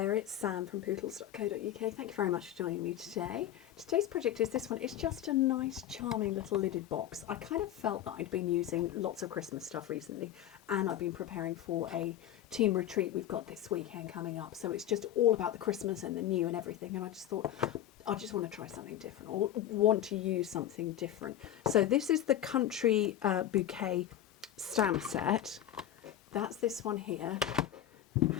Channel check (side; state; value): right; quieter; 11.7 dB